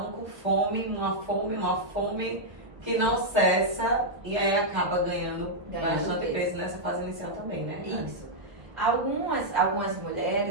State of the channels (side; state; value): left; late; 1.1 ms